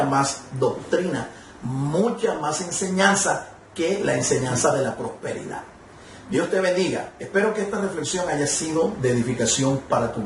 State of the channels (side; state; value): both; identical; correlation 1.00